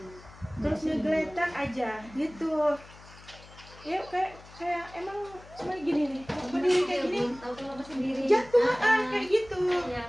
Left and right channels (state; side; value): noise; left; hum, 21 dB below the sound